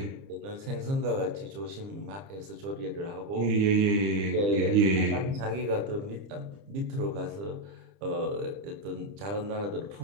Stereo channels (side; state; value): left; late; 30 ms